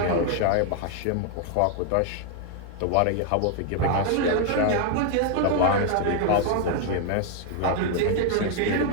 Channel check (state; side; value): different; both; correlation 0.00